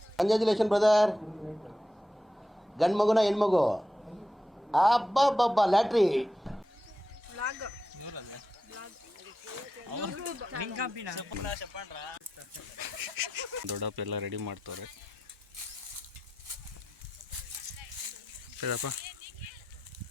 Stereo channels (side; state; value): both; normal; correlation 0.88